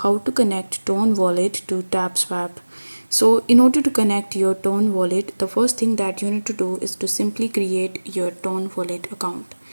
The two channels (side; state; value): both; inverted; correlation -1.00